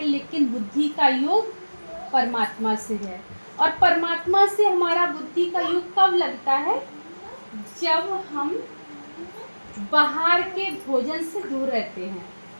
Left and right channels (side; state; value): both; inverted; correlation -1.00